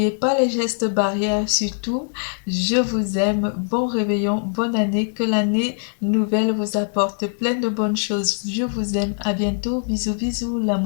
pas les gestes barrières, surtout. Je vous aime. Bon réveillon, bonne année. Que l'année nouvelle vous apporte plein de bonnes choses. Je vous aime. À bientôt. Bisous, bisous.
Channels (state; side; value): silent; right; digital silence